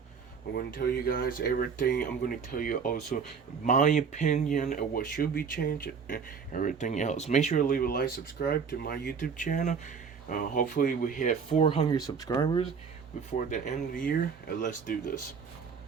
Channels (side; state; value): left; quieter; 6.1 dB